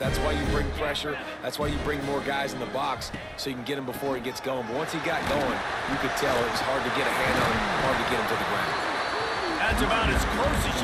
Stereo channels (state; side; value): identical; both; correlation 1.00